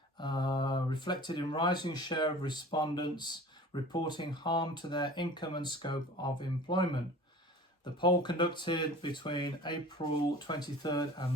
reflected in rising share of respondents reporting harm to their income and scope of employment. The poll conducted between April 23rd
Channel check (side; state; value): both; normal; correlation 0.42